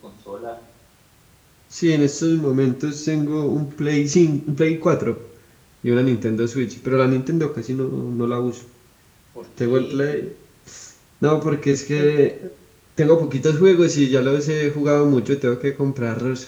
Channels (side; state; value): both; identical; correlation 1.00